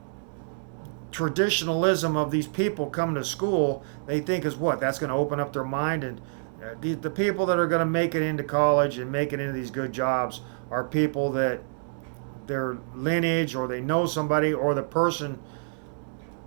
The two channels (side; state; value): left; silent; digital silence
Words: traditionalism of these people coming to school, they think is what? That's going to open up their mind, and the people that are going to make it into college and make it into these good jobs are people that their lineage, or they know somebody, or the person